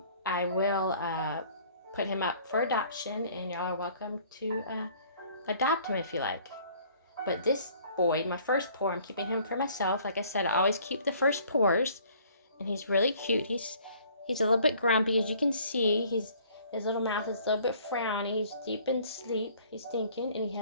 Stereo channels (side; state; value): both; inverted; correlation -0.56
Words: I will put him up for adoption, and y'all are welcome to adopt him if you like. But this boy, my first pour, I'm keeping him for myself. Like I said, I always keep the first pours, and he's really cute. He's a little bit grumpy, as you can see. His little mouth is a little bit frowny. He's deep in sleep. He's thinking, and he